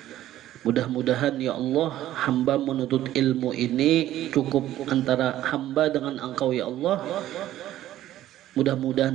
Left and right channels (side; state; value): left; quieter; 13.4 dB